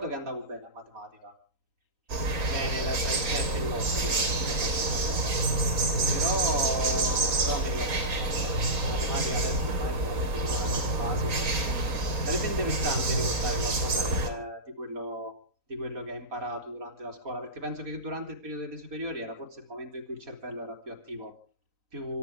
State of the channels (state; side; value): late; left; 3.9 ms